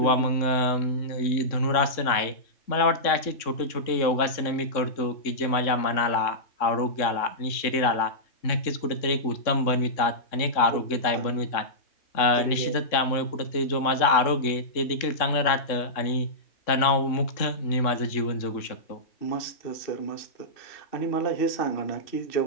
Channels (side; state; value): right; late; 3.6 ms